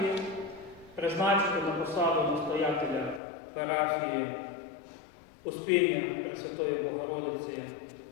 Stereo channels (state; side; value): drops out; right; at 3.2 s